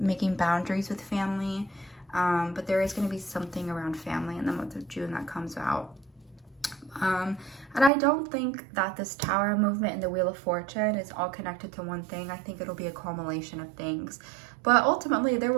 boundaries with family. But there is going to be something around family in the month of June that comes out. And I don't think that this Tower movement and the Wheel of Fortune is all connected to one thing. I think it'll be a culmination of things. But ultimately, there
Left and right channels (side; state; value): left; drops out; at 7.9 s